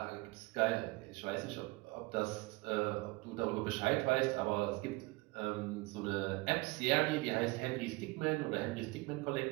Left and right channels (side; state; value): left; quieter; 23.6 dB